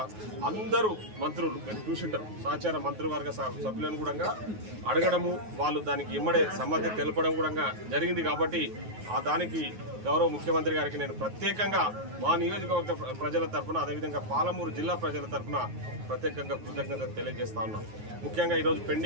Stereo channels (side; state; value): left; late; 9.4 ms